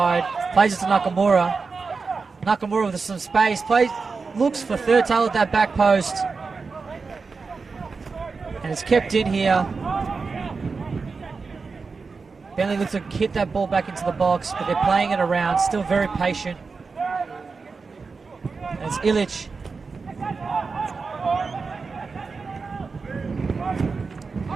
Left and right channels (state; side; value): quieter; left; 4.6 dB